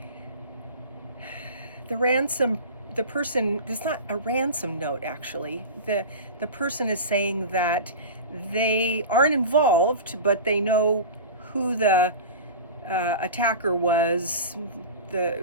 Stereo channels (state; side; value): inverted; both; correlation -0.31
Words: The person, it's not a ransom note actually. The person is saying that they aren't involved, but they know who the attacker was,